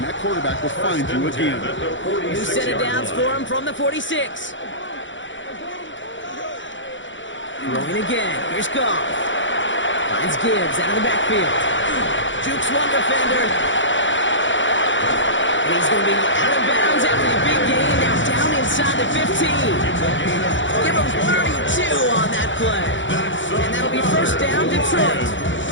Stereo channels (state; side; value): late; right; 0.55 ms